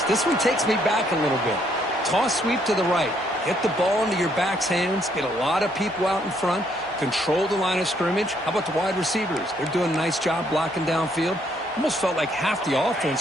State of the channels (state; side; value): normal; both; correlation 0.70